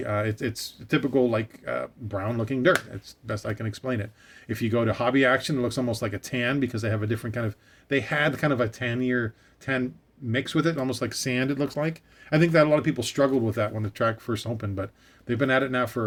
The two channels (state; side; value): identical; both; correlation 1.00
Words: it's typical like brown looking dirt. It's best I can explain it. If you go to Hobby Action, it looks almost like a tan because they have a different they had kind of a tan mix with it, almost like sand it looks like. I think that a lot of people struggled with that when the track first opened, but they've been at it now